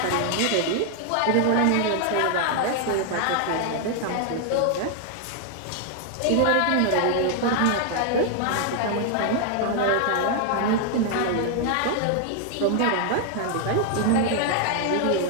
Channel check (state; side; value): different; both; correlation 0.00